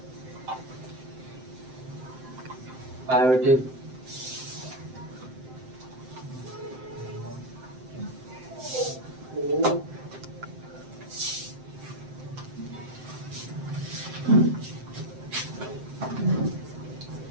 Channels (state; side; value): late; left; 7.7 ms